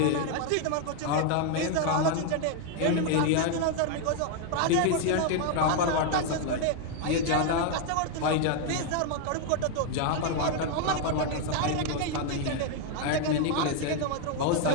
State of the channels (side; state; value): both; different; correlation 0.01